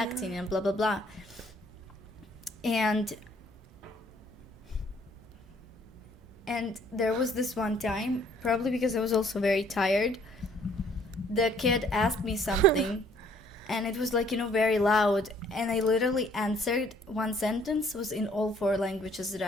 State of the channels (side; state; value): both; normal; correlation 0.61